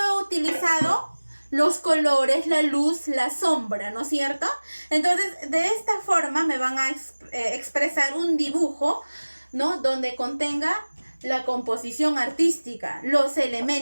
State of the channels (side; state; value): both; inverted; correlation -1.00